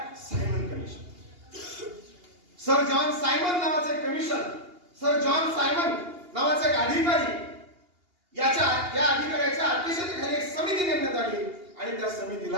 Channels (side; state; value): left; late; 2.8 ms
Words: Simon commission. Sir John Simon नावाचं एक कमिशन, सर जॉन सायमन नावाचा एक अधिकारी, या अधिकाऱ्याच्या अध्यक्षतेखाली एक समिती नेमण्यात आली आणि त्या